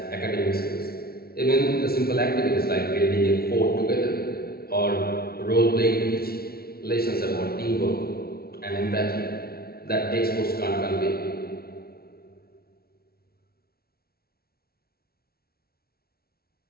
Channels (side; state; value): right; late; 0.44 ms